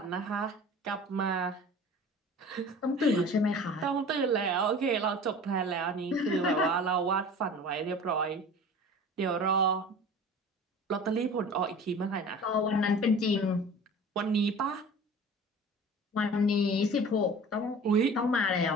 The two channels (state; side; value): normal; both; correlation 0.40